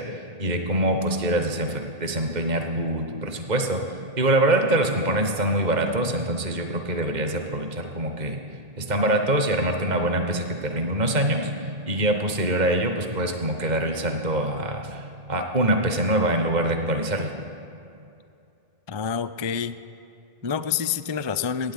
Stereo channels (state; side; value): late; left; 2.1 ms